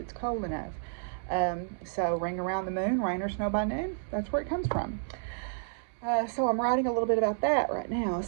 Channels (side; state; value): left; silent; digital silence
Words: cold enough. So ring around the moon, rain or snow by noon, that's where it comes from. So I'm writing a little bit about that right now,